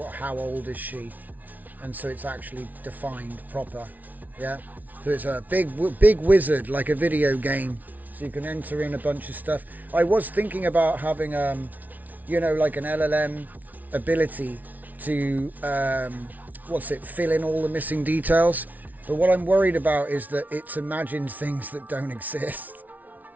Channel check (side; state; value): left; late; 0.077 ms